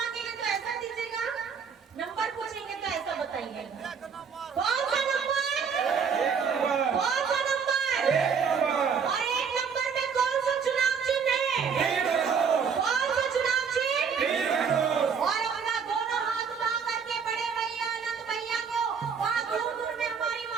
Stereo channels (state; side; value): quieter; left; 6.3 dB